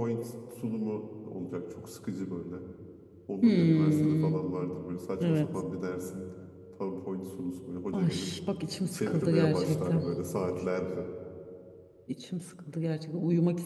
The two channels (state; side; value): identical; both; correlation 1.00